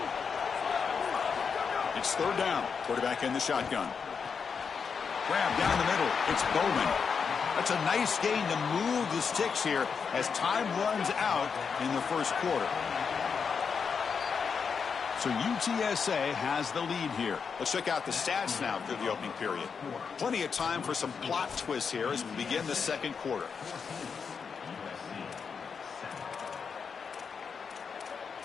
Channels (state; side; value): quieter; right; 6.0 dB